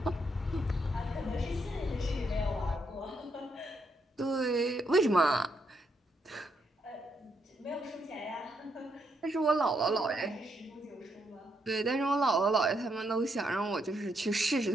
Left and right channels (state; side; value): normal; both; correlation 0.77